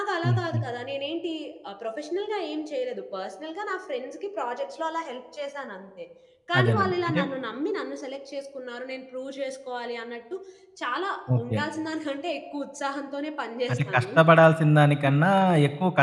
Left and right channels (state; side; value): identical; both; correlation 1.00